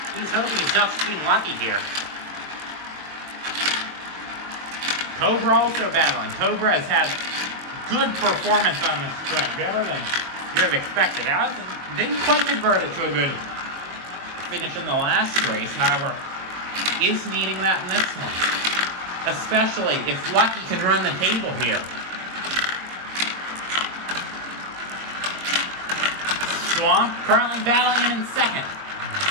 he's hoping he's not just being lucky here. Cobra also battling. Cobra has had good performance on this track, better than you would have expected. Now, didn't quite convert it to a good finish in the last race, however, is needing that in this one. Especially if Lucky can run the table here. Swamp currently battling him in second.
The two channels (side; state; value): left; late; 22 ms